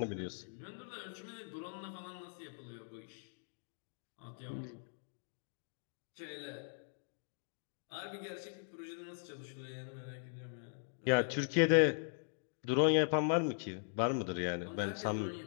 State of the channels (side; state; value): right; silent; digital silence